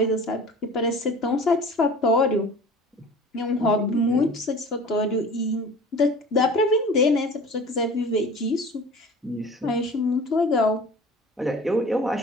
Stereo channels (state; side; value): normal; both; correlation 0.42